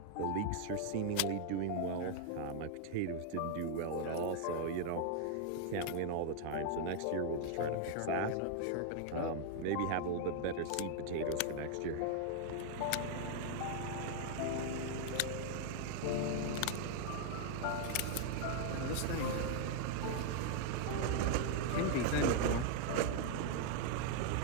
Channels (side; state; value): both; different; correlation 0.00